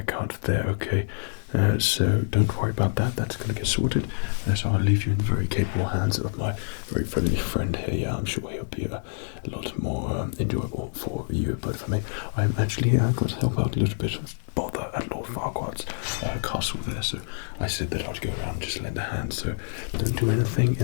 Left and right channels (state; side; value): silent; right; digital silence